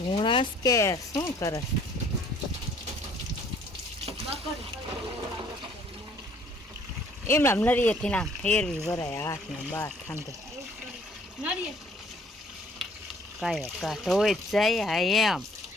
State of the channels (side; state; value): both; normal; correlation 0.58